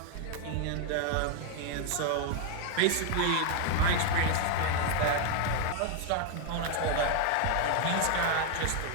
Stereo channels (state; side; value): different; both; correlation 0.01